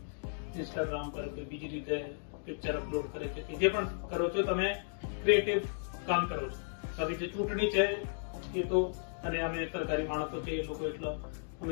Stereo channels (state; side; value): silent; right; digital silence